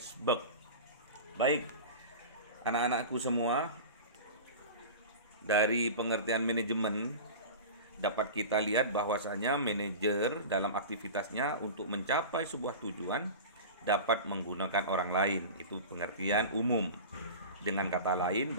Baik, anak-anakku semua, dari pengertian manajemen dapat kita lihat bahwasanya manajer dalam aktivitasnya untuk mencapai sebuah tujuan dapat menggunakan orang lain. Itu pengertian umum. Dengan kata lain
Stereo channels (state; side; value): inverted; both; correlation -0.31